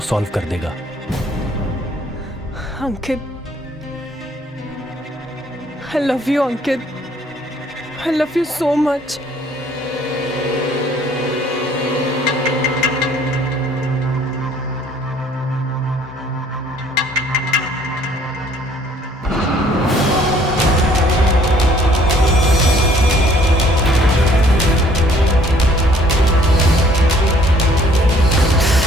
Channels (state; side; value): normal; both; correlation 0.60